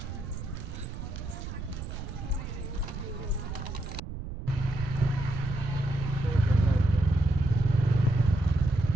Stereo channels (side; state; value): right; noise; rumble, 7 dB below the sound